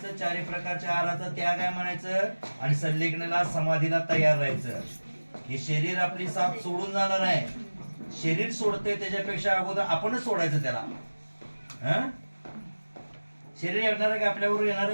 चारी प्रकारच्या आहाराचा त्याग आहे म्हणायचं, आणि संलेखनाला समाधीला तयार राहायचं. हे शरीर आपली साथ सोडून जाणार आहे. शरीर सोडते त्याच्यापेक्षा अगोदर आपणच सोडायचं त्याला. शरीर येणार आहे का आपल्याबरोबर? येणार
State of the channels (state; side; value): inverted; both; correlation -1.00